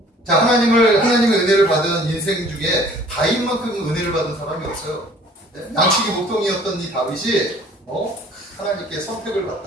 자, 하나님의 은혜를 받은 인생 중에 다윗만큼 은혜를 받은 사람이 없어요. 양치기 목동이었던 이 다윗이 하나님께 선택을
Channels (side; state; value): both; normal; correlation 0.52